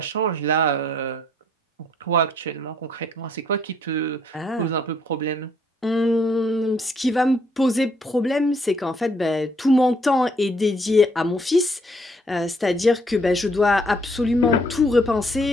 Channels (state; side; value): normal; both; correlation 0.67